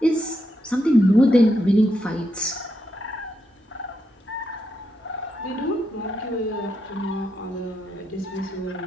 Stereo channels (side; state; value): both; normal; correlation 0.82